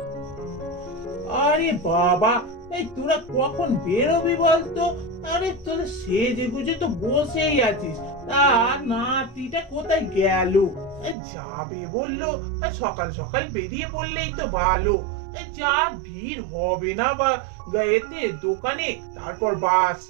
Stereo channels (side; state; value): left; drops out; at 11.2 s